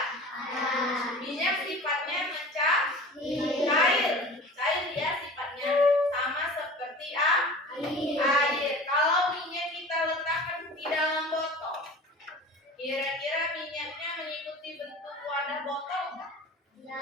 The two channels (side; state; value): both; normal; correlation 0.39